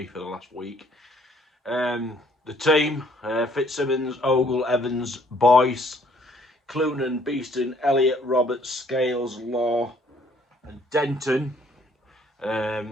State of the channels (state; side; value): normal; both; correlation 0.62